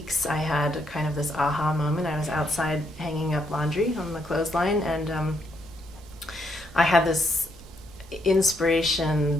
I had kind of this aha moment. I was outside hanging up laundry on the clothesline, and I had this inspiration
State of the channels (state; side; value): normal; both; correlation 0.75